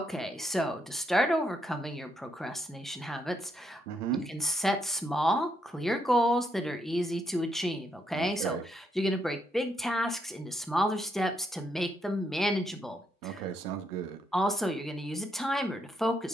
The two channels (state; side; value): normal; both; correlation 0.77